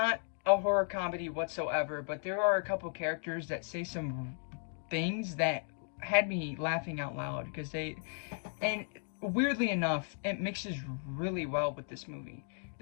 a horror comedy whatsoever, but there are a couple characters that say some things that had me laughing out loud, because and weirdly enough, it mixes really well with this movie.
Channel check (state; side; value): silent; right; 54 dB below the other